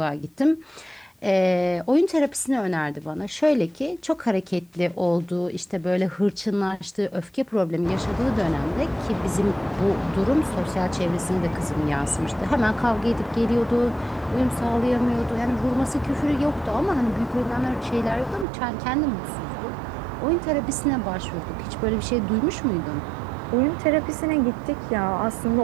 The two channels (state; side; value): drops out; left; at 18.4 s